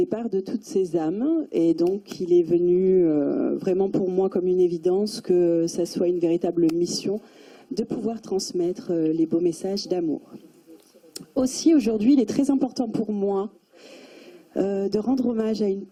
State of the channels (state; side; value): identical; both; correlation 1.00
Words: de toutes ces âmes. Et donc, il est venu vraiment pour moi comme une évidence que ça soit une véritable mission de pouvoir transmettre les beaux messages d'amour. Aussi, aujourd'hui, il est très important pour moi de rendre hommage à une